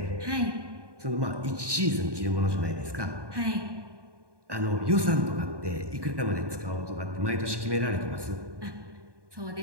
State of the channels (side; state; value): left; late; 1.2 ms